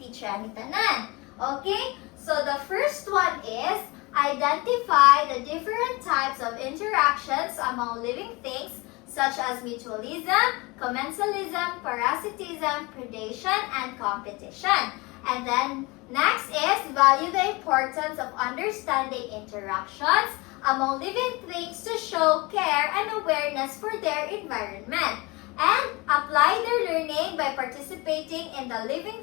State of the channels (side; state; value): right; quieter; 24.8 dB